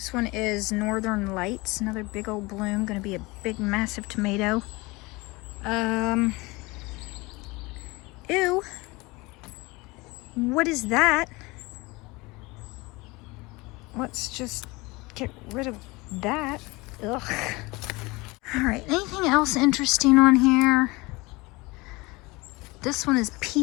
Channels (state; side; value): quieter; right; 23.7 dB